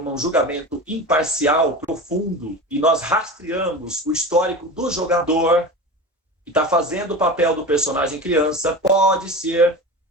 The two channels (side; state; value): both; normal; correlation 0.29